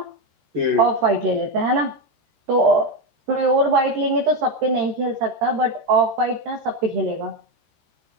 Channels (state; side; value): late; left; 13 ms